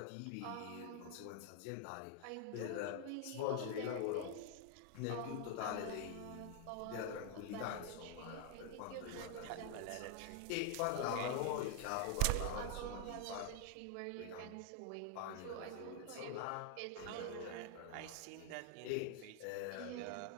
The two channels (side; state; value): both; different; correlation 0.00